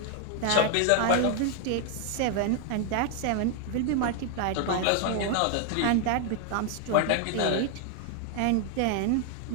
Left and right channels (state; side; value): different; both; correlation 0.00